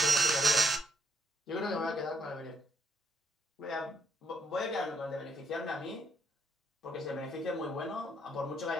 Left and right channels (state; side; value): normal; both; correlation 0.71